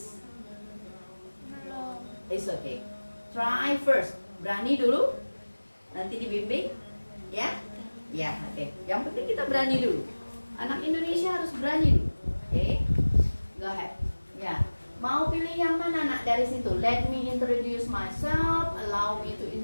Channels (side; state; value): both; inverted; correlation -1.00